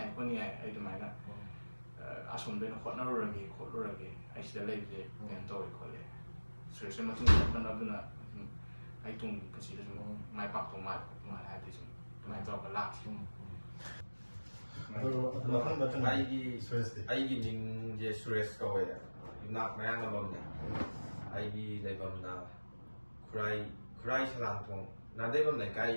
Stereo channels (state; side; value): inverted; both; correlation -1.00